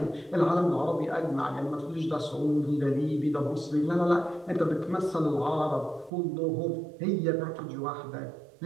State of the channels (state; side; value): drops out; left; at 6.1 s